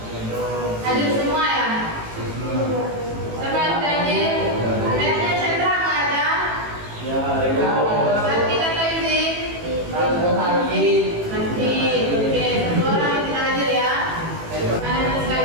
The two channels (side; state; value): left; late; 18 ms